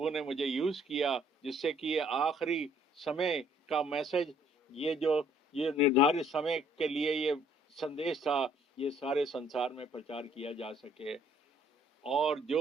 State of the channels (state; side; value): normal; both; correlation 0.62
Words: ने मुझे यूज किया, जिससे कि ये आखिरी समय का मैसेज, ये निर्धारित समय के लिए ये संदेश था, ये सारे संसार में प्रचार किया जा सके। और